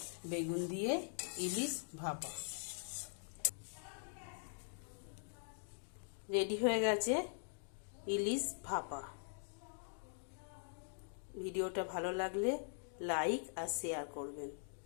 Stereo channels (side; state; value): right; silent; digital silence